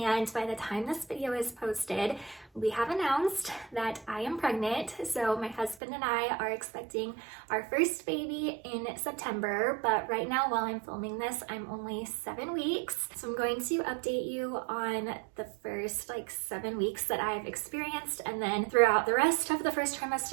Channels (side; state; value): left; drops out; at 5.8 s